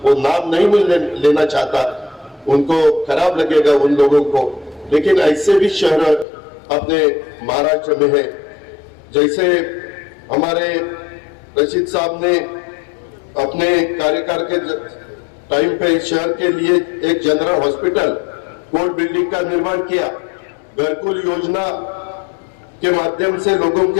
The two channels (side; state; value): right; drops out; at 6.2 s